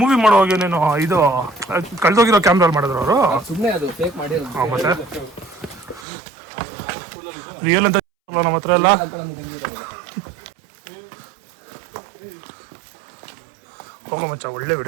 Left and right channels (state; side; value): drops out; left; at 6.1 s